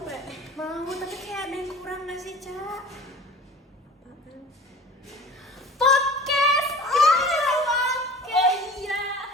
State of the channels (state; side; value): normal; both; correlation 0.41